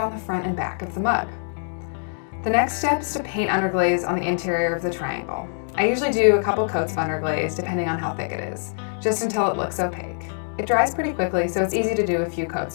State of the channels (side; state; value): right; silent; digital silence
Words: the front and back of the mug. The next step is to paint underglaze on the interior of the triangle. I usually do a couple coats of underglaze depending on how thick it is, just until it looks opaque. It dries pretty quickly, so it's easy to do a few coats